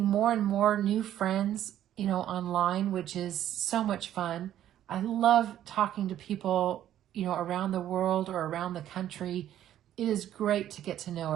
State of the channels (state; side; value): quieter; left; 11.7 dB